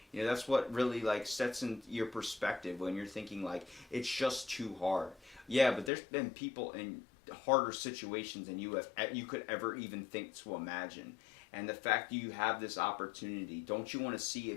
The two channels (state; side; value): drops out; right; at 5.9 s